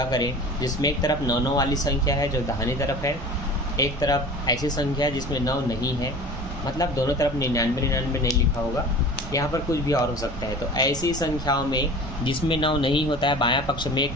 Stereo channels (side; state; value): right; noise; rumble, 8 dB below the sound